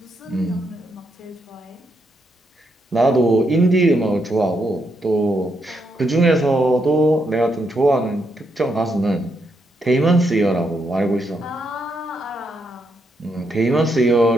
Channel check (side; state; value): both; normal; correlation 0.79